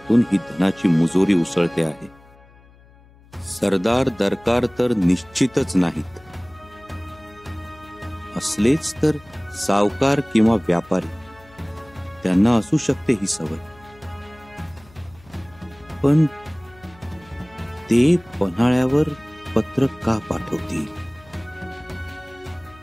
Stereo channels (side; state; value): left; noise; hum, 26 dB below the sound